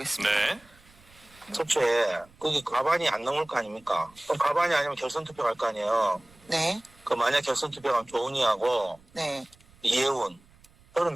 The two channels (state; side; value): noise; right; rumble, 28 dB below the sound